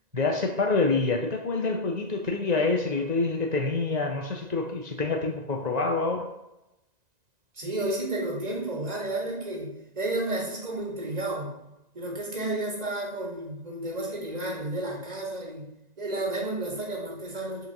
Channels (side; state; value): left; late; 1.9 ms